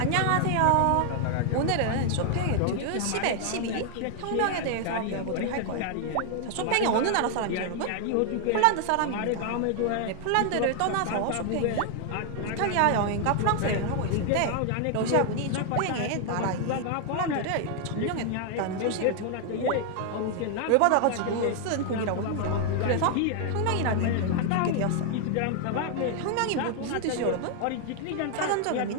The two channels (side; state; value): both; different; correlation 0.00